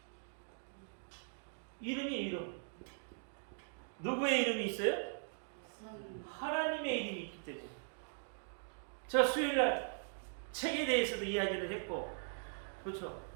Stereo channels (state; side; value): silent; left; digital silence